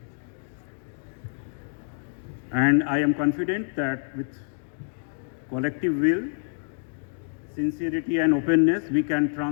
And I am confident that with collective will, sincerity and openness, we can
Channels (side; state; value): right; silent; digital silence